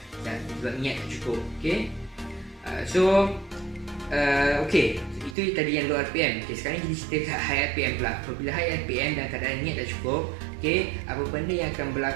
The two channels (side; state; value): left; drops out; at 5.4 s